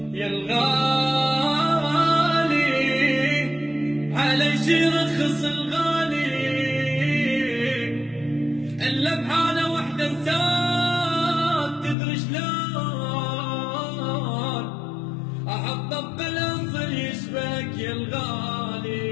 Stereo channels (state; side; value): drops out; right; at 12.0 s